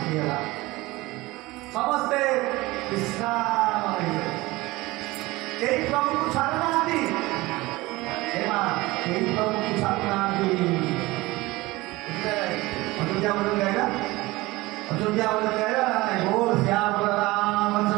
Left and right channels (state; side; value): quieter; left; 20.5 dB